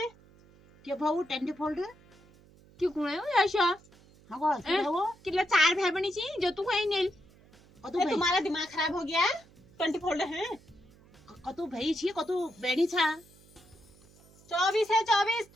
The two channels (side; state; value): right; noise; hum, 26 dB below the sound